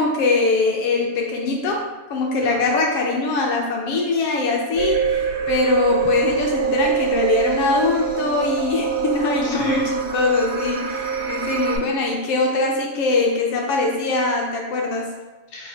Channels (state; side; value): late; right; 7.1 ms